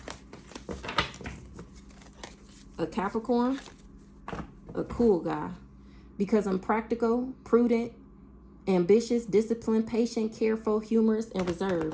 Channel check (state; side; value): identical; both; correlation 1.00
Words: A Capricorn, a cool guy. Because I'm practical, prudent, ambitious, disciplined, patient, careful, humorous, and